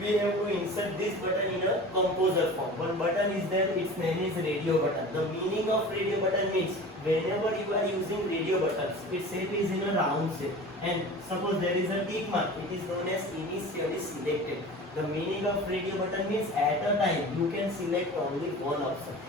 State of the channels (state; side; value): normal; both; correlation 0.37